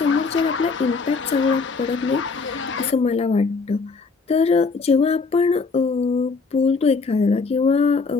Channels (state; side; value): quieter; right; 4.5 dB